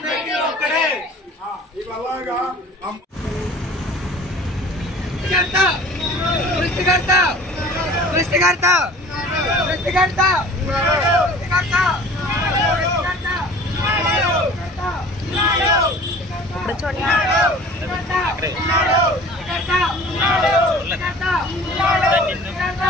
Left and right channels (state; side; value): normal; both; correlation 0.45